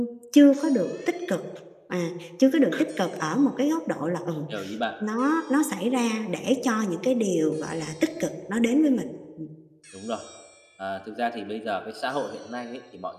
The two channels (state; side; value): identical; both; correlation 1.00